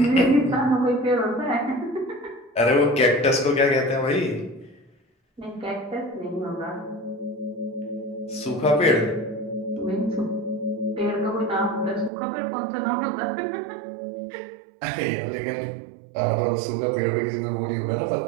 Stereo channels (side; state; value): left; drops out; at 12.1 s